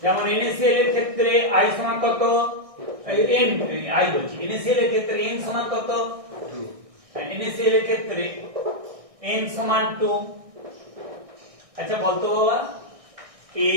NaCl এর ক্ষেত্রে i সমান কত, n i বলছি, NaCl এর ক্ষেত্রে n সমান কত 2, NaCl এর ক্ষেত্রে n সমান 2। আচ্ছা বলতো বাবা,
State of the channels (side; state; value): left; late; 1.6 ms